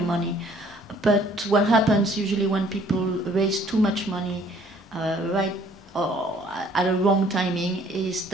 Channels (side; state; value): both; normal; correlation 0.58